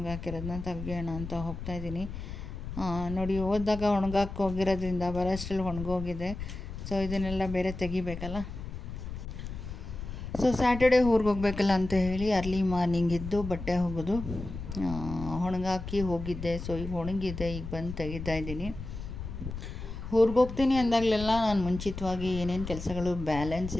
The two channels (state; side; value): noise; left; rumble, 8 dB below the sound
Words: ತೆಗಿಯೋಣ ಅಂತ ಹೋಗ್ತಾಯಿದ್ದೀನಿ. ನೋಡಿ ಹೋದಾಗ ಒಣಗಾಕಿ ಹೋಗಿರೋದ್ರಿಂದ ಬರೋಷ್ಟರಲ್ಲಿ ಒಣಗೋಗಿದೆ. ಸೊ ಇದನ್ನೆಲ್ಲ ಬೇರೆ ತೆಗಿಬೇಕಲ್ಲ. ಸೊ ಸ್ಯಾಟರ್ಡೇ ಊರಿಗೆ ಹೋಗಬೇಕಲ್ಲ ಅಂತ ಹೇಳಿ ಅರ್ಲಿ ಮಾರ್ನಿಂಗ್ ಇದ್ದು ಬಟ್ಟೆ ಒಗೆದು ಒಣಗಾಕಿ ಹೋಗಿದ್ದೆ. ಸೊ ಈಗ ಒಣಗಿದೆ, ಈಗ ಬಂದು ತೆಗಿತಾ ಇದ್ದೀನಿ. ಊರಿಗೆ ಹೋಗ್ತೀನಿ ಅಂದಾಗಲೆಲ್ಲ ನಾನು ಮುಂಚಿತವಾಗಿ ಏನೇನು ಕೆಲಸಗಳು ಬ್ಯಾಲೆನ್ಸ್